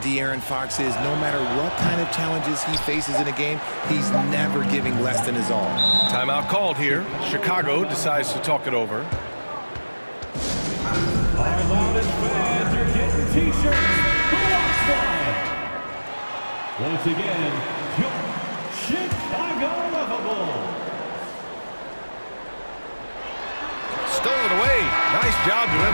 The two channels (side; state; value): both; inverted; correlation -1.00